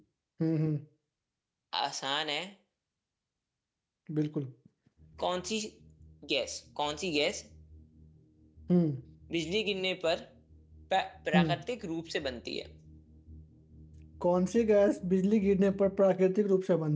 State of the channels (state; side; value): identical; both; correlation 1.00